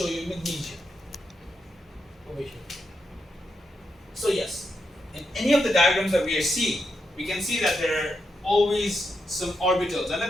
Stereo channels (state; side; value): normal; both; correlation 0.84